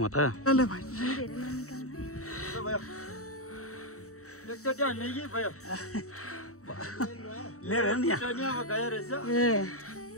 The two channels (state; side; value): late; right; 0.64 ms